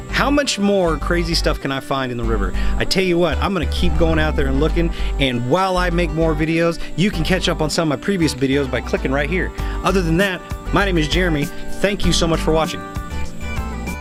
How much more crazy stuff can I find in the river? I tell you what, I'm gonna keep going out there and looking, and while I make more videos, you can catch up on some of my previous videos by clicking right here. Other than that, my name is Jeremy. Thank you so much for watching.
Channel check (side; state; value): both; identical; correlation 1.00